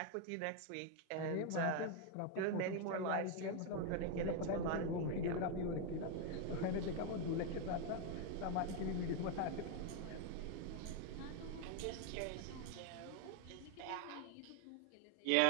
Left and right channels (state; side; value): different; both; correlation 0.01